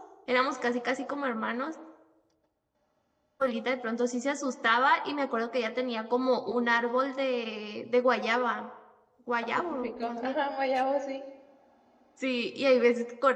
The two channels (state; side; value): identical; both; correlation 1.00